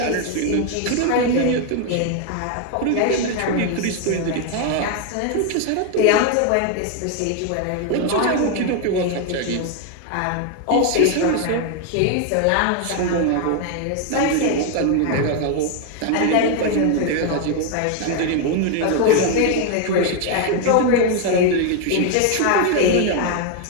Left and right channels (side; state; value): both; different; correlation 0.01